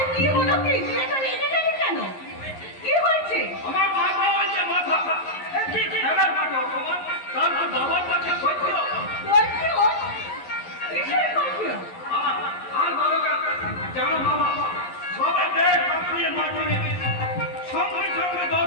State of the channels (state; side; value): late; right; 11 ms